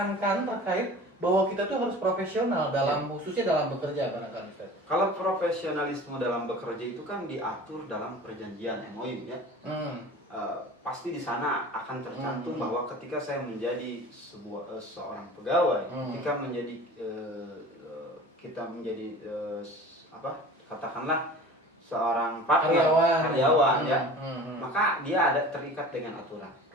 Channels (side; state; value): both; normal; correlation 0.40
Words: terkait bahwa kita tuh harus profesional dalam khususnya dalam bekerja, barangkali Ustaz? Kalau profesionalisme dalam bekerja itu kan diatur dalam perjanjian MOU ya. Pasti di sana akan tercantum bahwa ketika saya menjadi seorang pegawai, ketika menjadi kita menjadi katakanlah seorang partner karyawan ya, maka dia ada terikat dengan aturan.